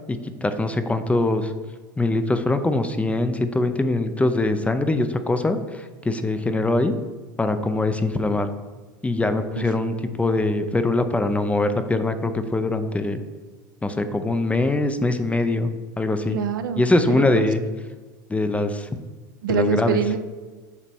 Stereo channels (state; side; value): normal; both; correlation 0.69